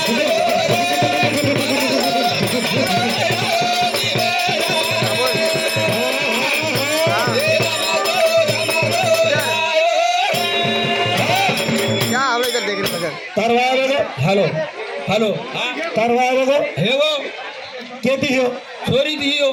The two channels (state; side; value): identical; both; correlation 1.00